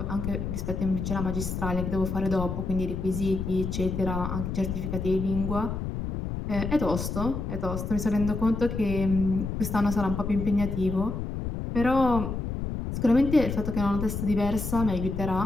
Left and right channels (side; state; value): left; noise; rumble, 4 dB below the sound